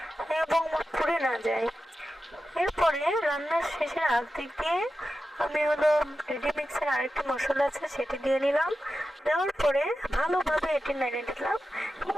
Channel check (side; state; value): both; normal; correlation 0.92